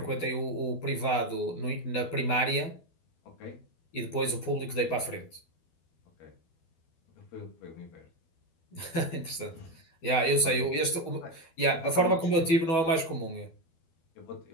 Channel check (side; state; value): right; late; 12 ms